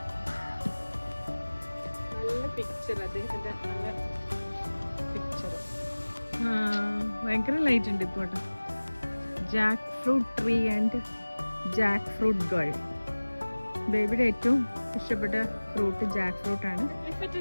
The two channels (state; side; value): inverted; both; correlation -1.00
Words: നല്ല പിക്ചർ അദ്ദേഹത്തിന്റെ. നല്ല പിക്ചർ. ഭയങ്കര ലൈറ്റ് ഉണ്ട് ഇപ്പോൾ. Jack fruit tree and Jack fruit girl. ബേബിയുടെ ഏറ്റവും ഇഷ്ടപ്പെട്ട ഫ്രൂട്ട് ജാക്ക് ഫ്രൂട്ട് ആണ്.